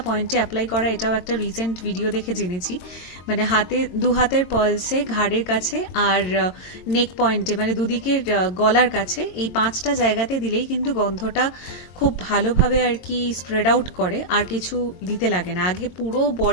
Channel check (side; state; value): right; late; 22 ms